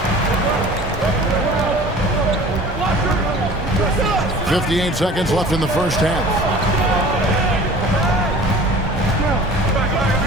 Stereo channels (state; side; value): normal; both; correlation 0.43